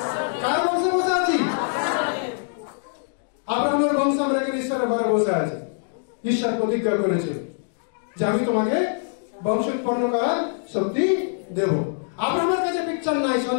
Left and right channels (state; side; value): silent; right; digital silence